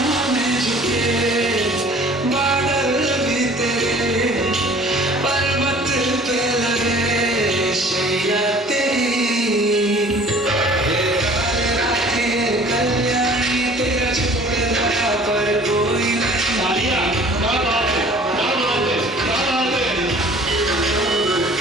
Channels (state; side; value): normal; both; correlation 0.50